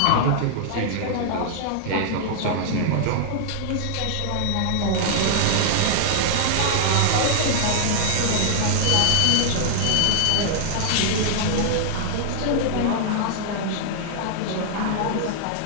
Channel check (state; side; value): different; both; correlation -0.01